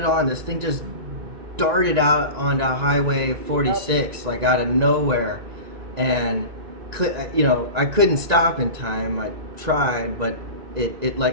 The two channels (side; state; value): left; late; 1.9 ms